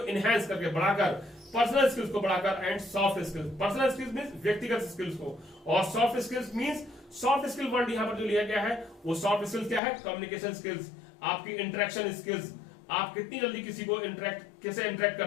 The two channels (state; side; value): drops out; right; at 9.8 s